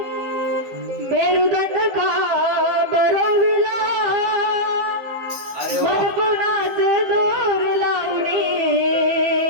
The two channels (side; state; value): left; late; 15 ms